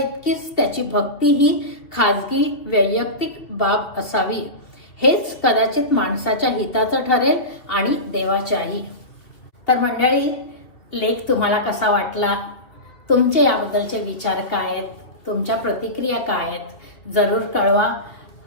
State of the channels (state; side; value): late; right; 2.7 ms